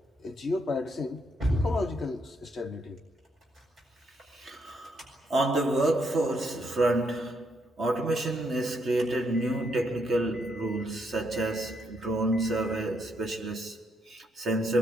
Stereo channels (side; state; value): both; normal; correlation 0.76